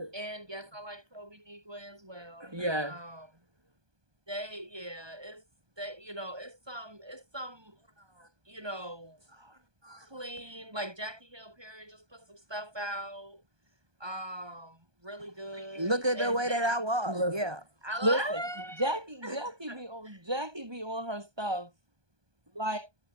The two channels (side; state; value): left; late; 1.2 ms